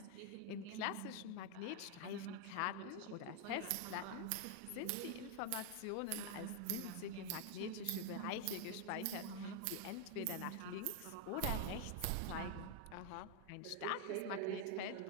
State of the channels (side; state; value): both; different; correlation 0.00